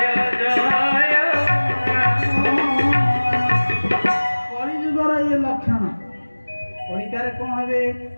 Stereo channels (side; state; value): both; inverted; correlation -1.00